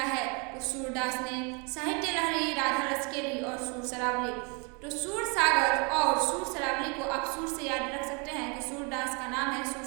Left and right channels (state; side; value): quieter; left; 32.9 dB